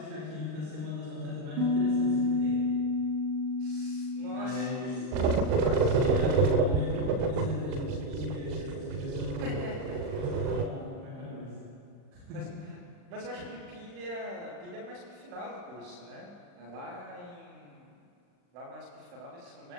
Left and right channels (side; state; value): left; late; 39 ms